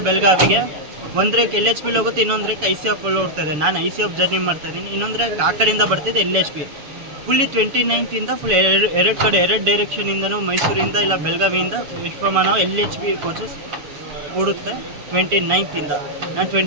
ಬೆಳಗಾವಿಗೆ. ಒಂದು ರೇಕ್ LHP ಹೋಗುತ್ತೆ, ಇನ್ನೊಂದು ರೇಕ್ ICF ಓಡ್ತಾ ಇದೆ. ನಾನು ICF ಜರ್ನಿ ಮಾಡ್ತಾ ಇದ್ದೀನಿ, ಇನ್ನೊಂದು ರೇಕ್ ಆ ಕಡೆಯಿಂದ ಬರ್ತಿದೆ LHP. ಫುಲ್ಲಿ 29th ಫುಲ್ ಎರಡು ಕಡೆ 2 ಡೈರೆಕ್ಷನಿಂದನೂ ಮೈಸೂರಿಂದ ಇಲ್ಲ ಬೆಳಗಾವಿಯಿಂದ ವಿಶ್ವಮಾನವ LHP ಕೋಚಸ್ ಓಡುತ್ತೆ 29th. ನಾನು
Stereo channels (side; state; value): left; late; 7.0 ms